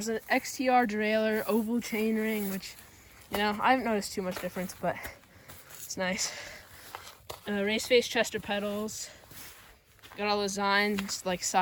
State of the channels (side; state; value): both; identical; correlation 1.00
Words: an XTR derailleur, oval chainring, which, you know, I haven't noticed too much difference, but it's nice. Race face Chester pedals. Got all the designs like